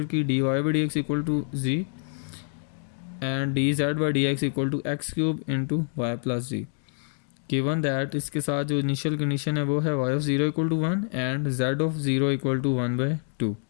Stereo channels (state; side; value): silent; right; 60 dB below the other